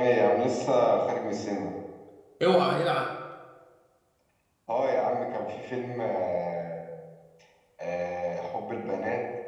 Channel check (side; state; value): both; identical; correlation 1.00